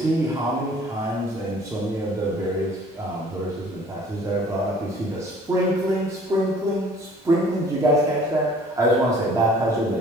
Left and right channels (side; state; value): both; normal; correlation 0.52